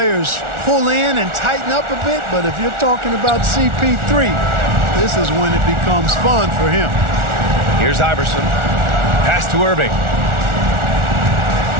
pull in and tighten up a bit, but if you're talking about CP3, this is when it becomes fun for him. Here's Iverson. Pass to Irving.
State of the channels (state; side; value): late; left; 1.4 ms